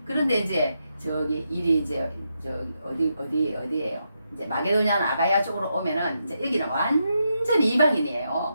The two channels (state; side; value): inverted; both; correlation -0.83